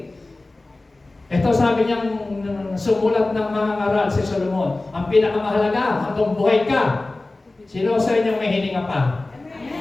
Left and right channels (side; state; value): right; quieter; 3.0 dB